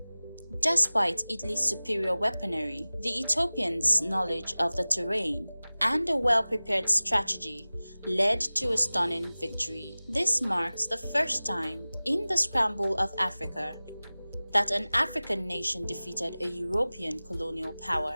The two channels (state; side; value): inverted; both; correlation -0.98